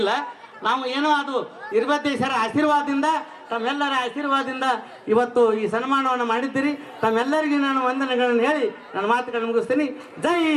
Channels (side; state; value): both; identical; correlation 1.00